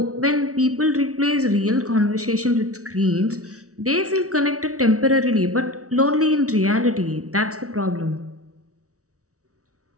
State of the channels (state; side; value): late; left; 0.65 ms